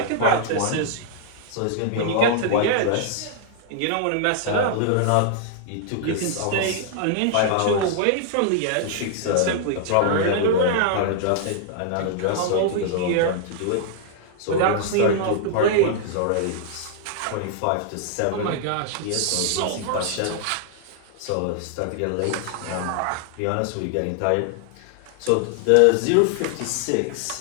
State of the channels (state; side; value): different; both; correlation -0.01